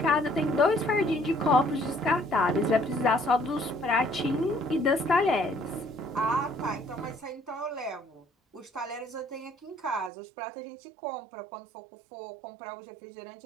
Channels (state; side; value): drops out; left; at 10.1 s